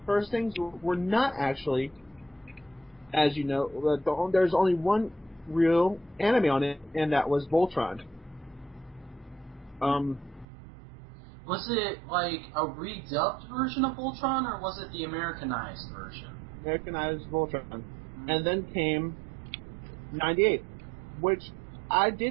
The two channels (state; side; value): drops out; left; at 10.5 s